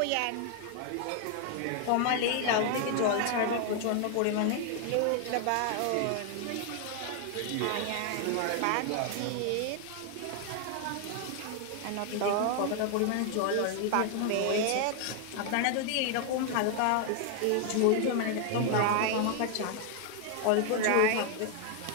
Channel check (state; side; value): different; both; correlation 0.00